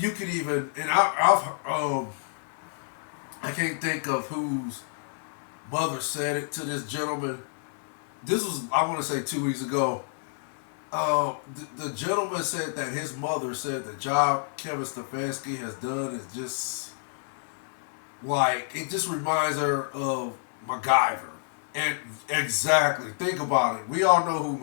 could even, and I can't think of whose mother said it to this gentleman. This was, I want to say, 2 weeks ago. The gentleman said that his mother said the job Kevin Stefanski has done is just like, it just reminds her of MacGyver. And exactly, think about it. We all know who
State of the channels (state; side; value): silent; right; digital silence